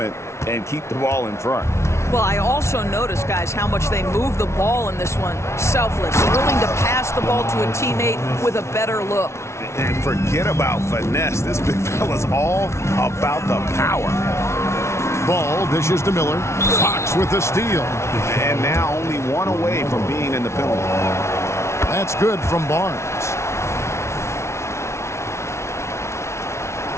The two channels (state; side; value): late; right; 0.13 ms